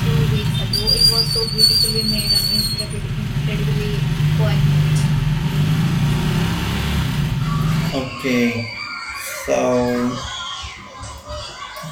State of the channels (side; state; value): both; identical; correlation 1.00